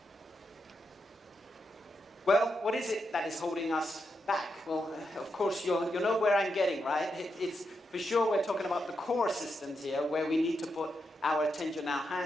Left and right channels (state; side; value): normal; both; correlation 0.84